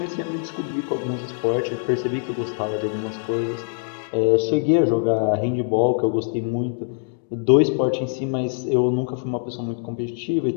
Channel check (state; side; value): silent; right; digital silence